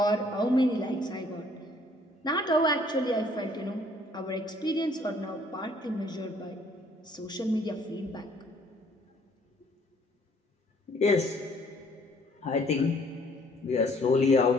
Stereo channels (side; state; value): both; normal; correlation 0.61